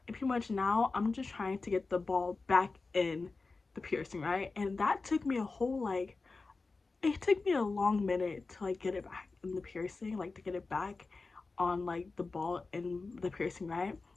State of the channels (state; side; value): quieter; right; 3.9 dB